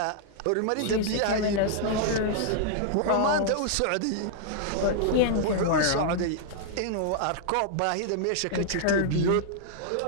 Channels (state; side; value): different; both; correlation -0.01